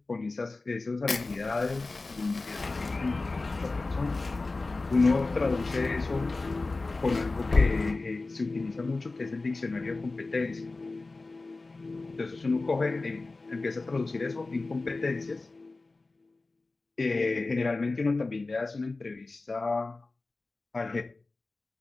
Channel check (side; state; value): right; quieter; 3.4 dB